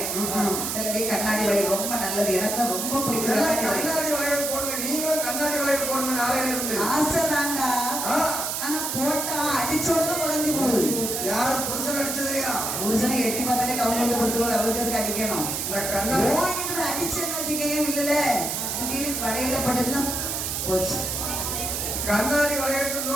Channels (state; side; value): noise; right; hiss, 2 dB below the sound